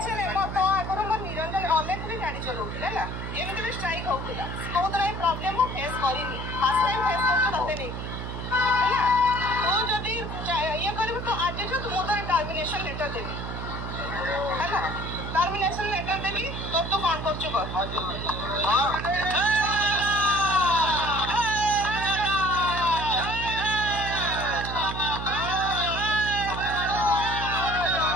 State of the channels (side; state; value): right; noise; hum, 6 dB below the sound